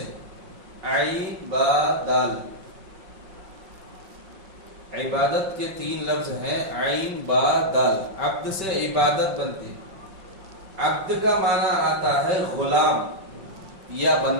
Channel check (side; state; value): left; late; 5.6 ms